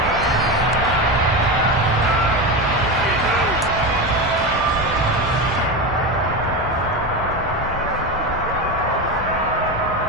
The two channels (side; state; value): both; normal; correlation 0.19